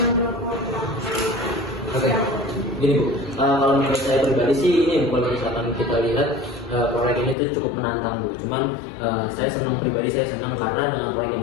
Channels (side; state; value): right; drops out; at 7.4 s